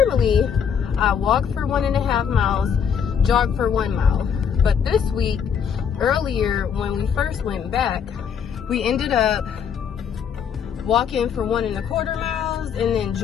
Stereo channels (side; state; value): right; quieter; 7.4 dB